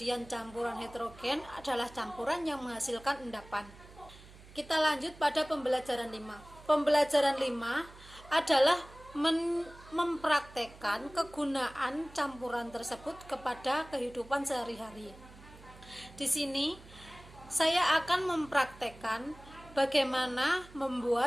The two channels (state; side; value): noise; right; hum, 20 dB below the sound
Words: campuran heterogen adalah campuran yang menghasilkan endapan. Kita lanjut pada pembelajaran 5. Pembelajaran 5 adalah mempraktekkan kegunaan campuran tersebut kepada kehidupan sehari-hari. Di sini saya akan mempraktekkan bagaimana